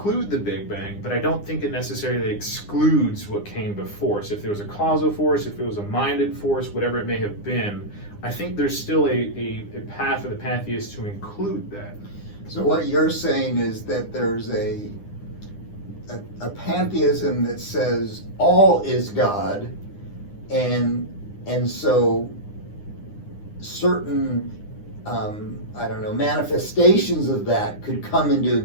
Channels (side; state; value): right; late; 9.8 ms